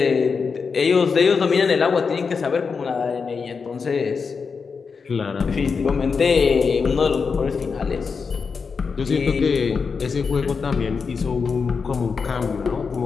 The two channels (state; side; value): quieter; right; 5.3 dB